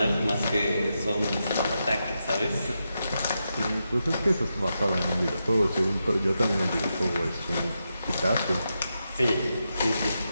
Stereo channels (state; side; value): inverted; both; correlation -0.86